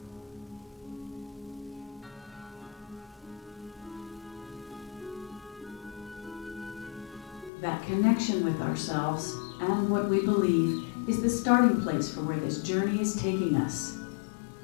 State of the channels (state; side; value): drops out; right; at 7.5 s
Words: That connection with ourselves and what we believe is the starting place for where this journey is taking us.